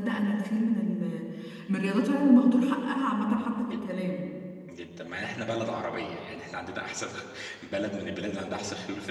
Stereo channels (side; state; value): both; identical; correlation 1.00